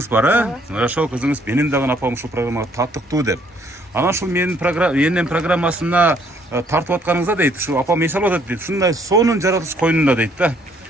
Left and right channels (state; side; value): normal; both; correlation 0.65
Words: бар, Ошол кызыңыз менин дагы апам ушул программага таттыктуу деп. Анан ушул менин энем программасына тартып атканыңызда дейт, ушу апам эс алып атат дейт. Ушундай сонун жаратылыш койнунда дейт да.